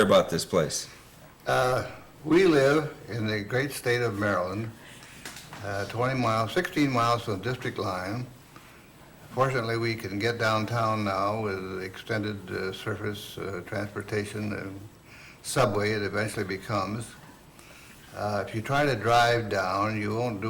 about this place? we live in the great state of Maryland, 16 miles from the district line. Fortunately, we can get downtown now with extended surface transportation and subway it eventually becomes. If you try to drive down, you won't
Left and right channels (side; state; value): both; identical; correlation 1.00